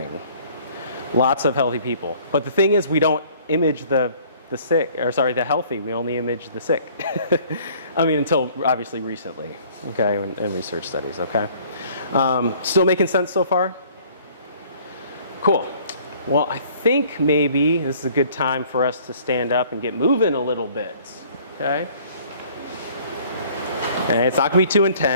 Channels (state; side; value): inverted; both; correlation -0.55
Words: Lots of healthy people. But the thing is, we don't image the healthy. We only image the sick. I mean, until obviously recently, okay, and research studies, okay? Still making sense so far? Cool. Well, I think maybe this is a good time for us to stand up and get moving a little bit, okay? Okay, it's not gonna be too